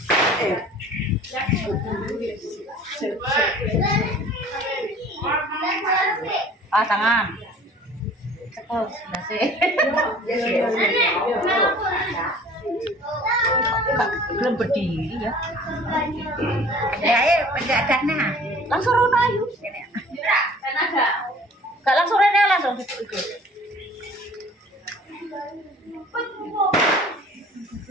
Tangan. Terus, belum berdiri ya. Ya, penjagana. Langsung rono ayo. Gak langsung rene langsung ikut.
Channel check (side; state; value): both; normal; correlation 0.48